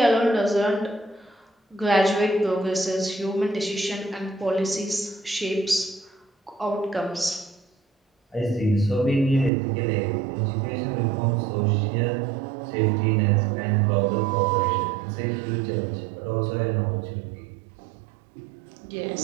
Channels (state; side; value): drops out; left; at 9.5 s